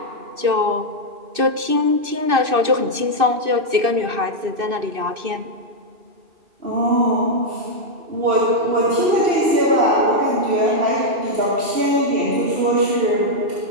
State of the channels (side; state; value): left; late; 2.6 ms